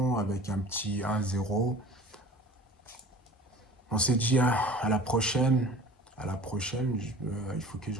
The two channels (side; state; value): both; normal; correlation 0.43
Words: avec un petit 1-0. On s'est dit à la prochaine. À la prochaine, il faut que je